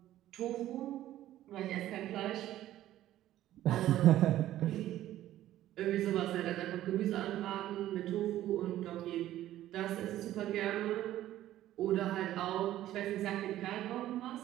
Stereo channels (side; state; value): left; quieter; 13.6 dB